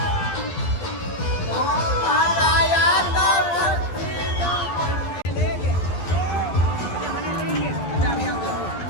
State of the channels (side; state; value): right; late; 11 ms